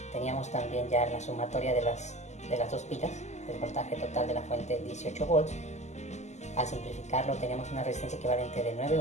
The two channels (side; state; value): right; late; 0.33 ms